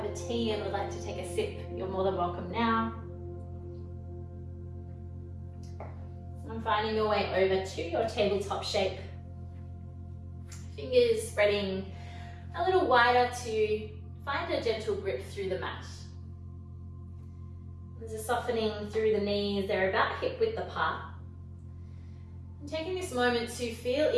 a tea and would like to take a sip, you're more than welcome now. And finding your way over to your tabletop shape. Fingers spreading a little wider to find a gentle grip through the mat. There's a softening through the knees, they're about hip width apart. And taking this moment to feel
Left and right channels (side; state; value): both; identical; correlation 1.00